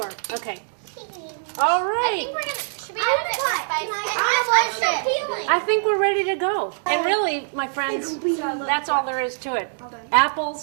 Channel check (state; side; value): silent; left; digital silence